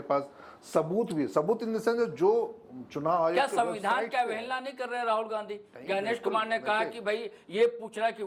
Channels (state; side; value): identical; both; correlation 1.00